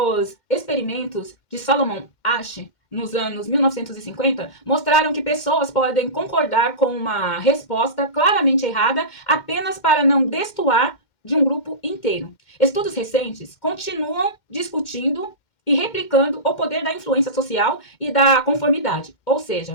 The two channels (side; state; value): right; late; 2.1 ms